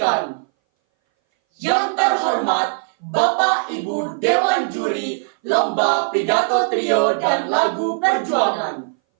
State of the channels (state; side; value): silent; left; 61 dB below the other